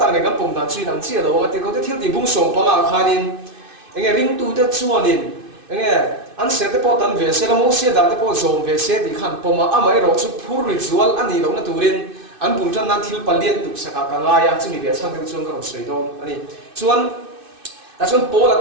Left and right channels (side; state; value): left; late; 2.6 ms